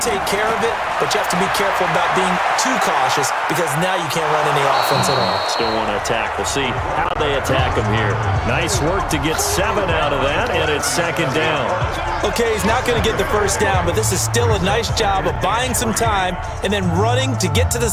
take care of it, but you have to be careful about being too cautious because now you can't run any offense at all. Still want to attack. We'll see how they attack him here. Nice work to get 7 out of that, and it's 2nd down. Okay, he's not going to get the 1st down, but this is still a nice job of buying some time and then running to get to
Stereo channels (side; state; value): both; identical; correlation 1.00